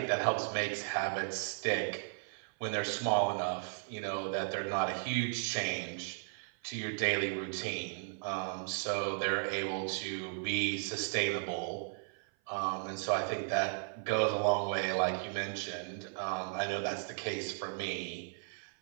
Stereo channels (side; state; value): left; silent; 54 dB below the other